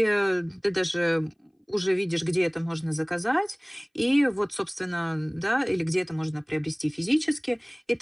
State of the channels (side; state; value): both; identical; correlation 1.00